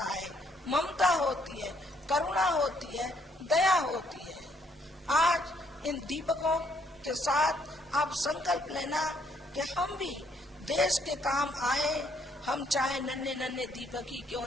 है, ममता होती है, करुणा होती है, दया होती है। आज इन दीपकों के साथ आप संकल्प लेना कि हम भी देश के काम आए, हम चाहे नन्हे नन्हे दीपक ही क्यों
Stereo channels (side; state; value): both; normal; correlation 0.69